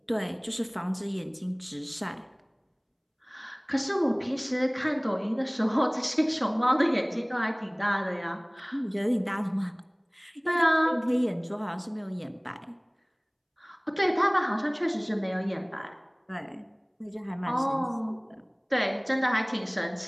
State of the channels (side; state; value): both; identical; correlation 1.00